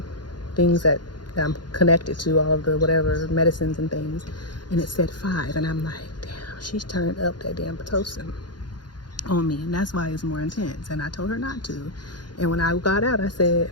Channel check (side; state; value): right; late; 0.71 ms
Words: things that I'm connected to, all of the whatever medicines and things, and it said 5. And I'm like, damn, she's turned up that damn Pitocin on me, and that's why it's more intense. And I told her not to. And when I got out, I